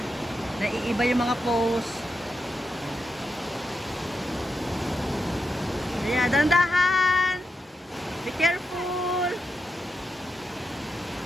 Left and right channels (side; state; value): both; normal; correlation 0.86